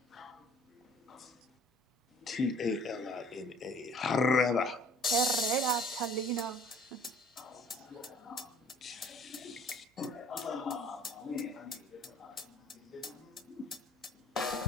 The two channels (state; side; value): normal; both; correlation 0.53